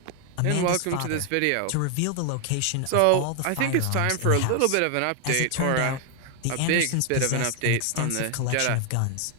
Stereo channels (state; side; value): different; both; correlation 0.00